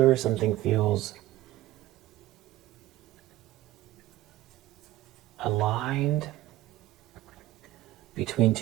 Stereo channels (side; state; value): left; quieter; 15.7 dB